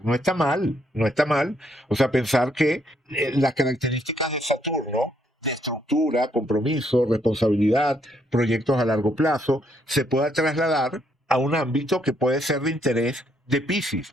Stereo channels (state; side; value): normal; both; correlation 0.72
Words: No está mal, no está mal. O sea, pensar que las características de Saturno, de estructura, compromiso, responsabilidad, proyectos a largo plazo, se pueda trasladar a un ámbito que puede ser de interés de Piscis,